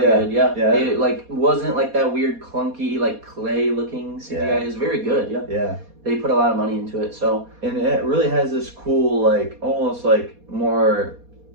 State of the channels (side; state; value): left; late; 4.2 ms